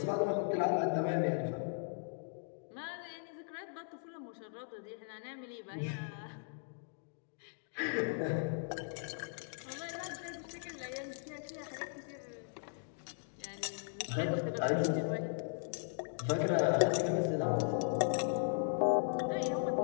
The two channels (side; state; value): right; silent; digital silence